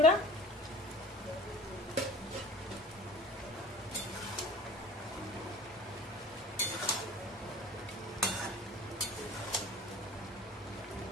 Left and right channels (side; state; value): both; normal; correlation 0.43